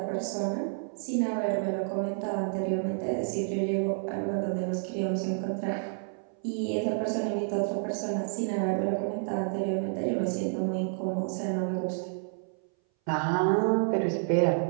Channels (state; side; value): silent; left; 58 dB below the other